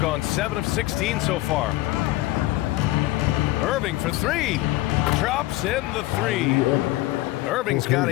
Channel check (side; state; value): right; quieter; 18.0 dB